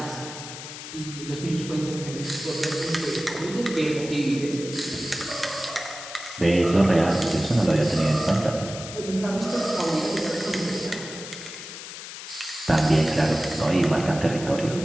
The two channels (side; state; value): left; noise; hiss, 11 dB below the sound